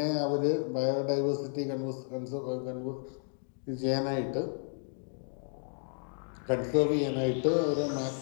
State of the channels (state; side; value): silent; right; 56 dB below the other